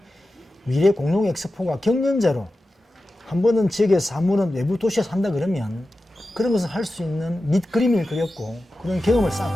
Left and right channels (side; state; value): both; normal; correlation 0.93